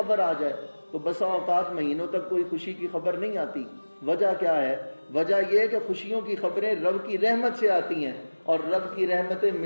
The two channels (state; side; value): inverted; both; correlation -1.00